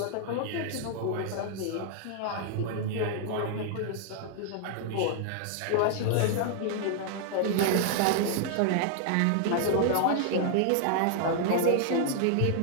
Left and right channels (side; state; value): both; different; correlation -0.01